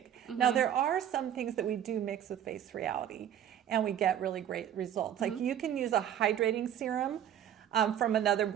Mm-hmm. Now, there are some things that we do mix with face reality, and we get really great results. Like you can use a hydrating serum from another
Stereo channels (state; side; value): quieter; left; 10.2 dB